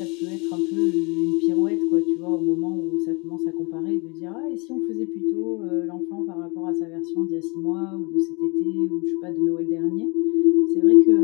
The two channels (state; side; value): quieter; right; 30.0 dB